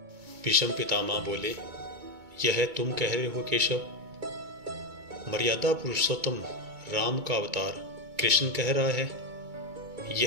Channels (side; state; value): left; late; 2.2 ms